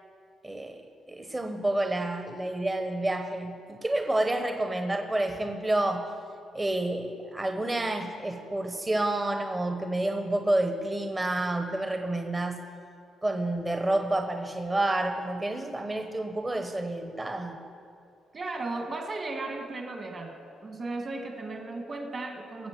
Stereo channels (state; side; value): normal; both; correlation 0.94